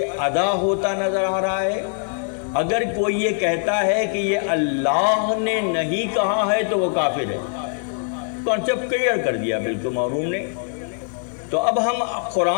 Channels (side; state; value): right; silent; digital silence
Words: ادا ہوتا نظر آ رہا ہے، اگر کوئی یہ کہتا ہے کہ یہ اللہ نے نہیں کہا ہے تو وہ کافر ہے. کانسیپٹ کلیئر کر دیا بالکل معروف نے. تو اب ہم